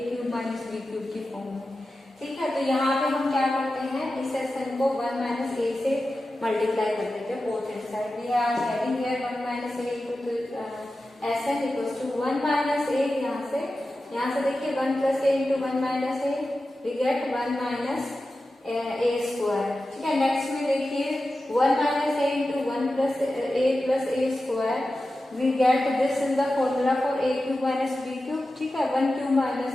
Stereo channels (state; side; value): normal; both; correlation 0.93